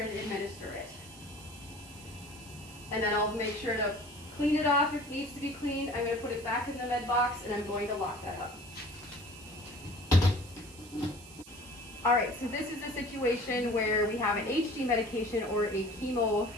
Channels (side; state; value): right; noise; hiss, 19 dB below the sound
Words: administer it. And then I'll make sure to clean it off if it needs to be cleaned. I'm going to put it back in the med box and I'm going to lock that up. Alright, so this is a situation where we have an HD medication or a chemo